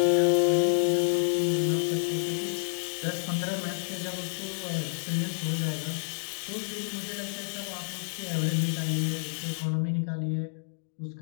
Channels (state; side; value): silent; right; digital silence